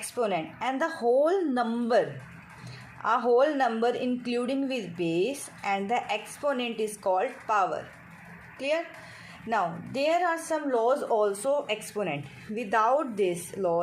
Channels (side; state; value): both; identical; correlation 1.00